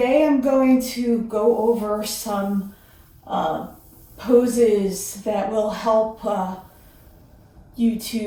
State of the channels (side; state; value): both; identical; correlation 1.00